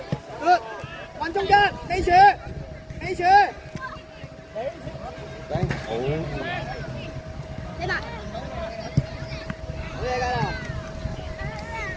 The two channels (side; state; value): both; identical; correlation 1.00